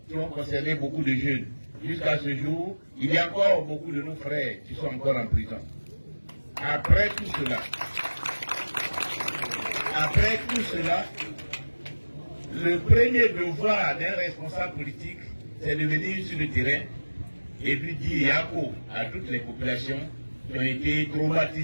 qui ont concerné beaucoup de jeunes. Jusqu'à ce jour, il y a encore beaucoup de nos frères qui sont encore en prison. Après tout cela, le premier devoir d'un responsable politique, c'est de venir sur le terrain et puis dire Yako à toutes les populations qui ont été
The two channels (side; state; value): both; inverted; correlation -1.00